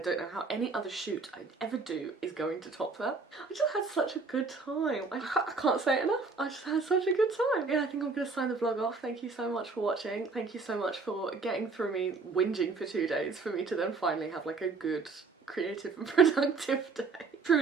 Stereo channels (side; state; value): left; quieter; 4.2 dB